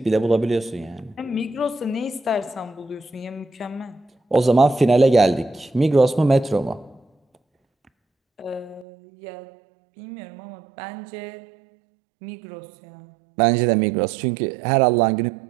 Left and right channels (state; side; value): drops out; left; at 8.8 s